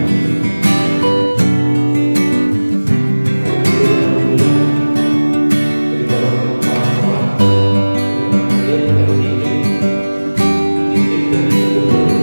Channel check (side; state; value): both; inverted; correlation -1.00